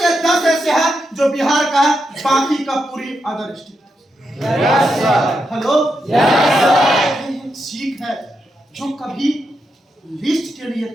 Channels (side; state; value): both; normal; correlation 0.84